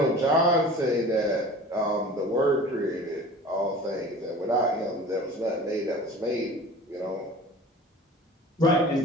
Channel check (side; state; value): both; normal; correlation 0.40